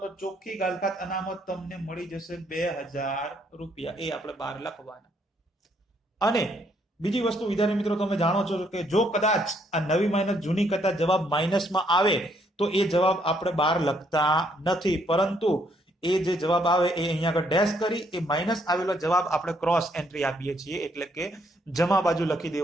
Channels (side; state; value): both; normal; correlation 0.70